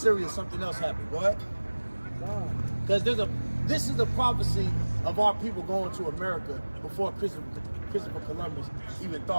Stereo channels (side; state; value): both; inverted; correlation -1.00